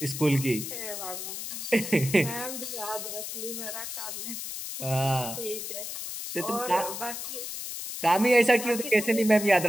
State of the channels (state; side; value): noise; left; hiss, 6 dB below the sound